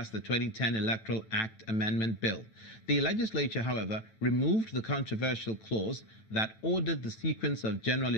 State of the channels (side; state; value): right; late; 9.1 ms